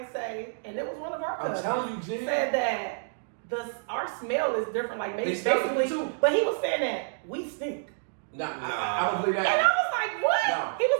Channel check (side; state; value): left; silent; digital silence